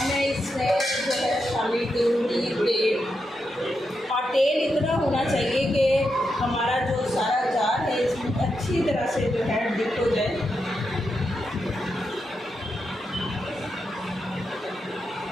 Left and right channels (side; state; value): both; normal; correlation 0.85